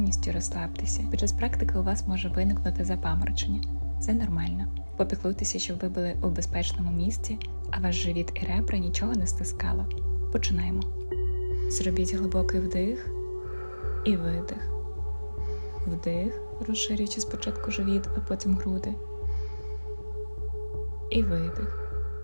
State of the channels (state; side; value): inverted; both; correlation -1.00